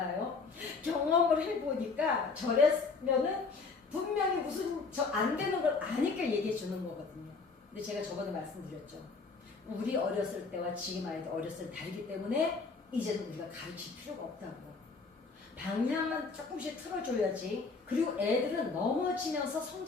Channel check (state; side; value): quieter; right; 4.5 dB